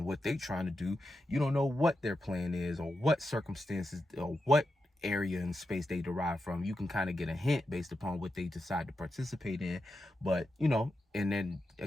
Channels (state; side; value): normal; both; correlation 0.88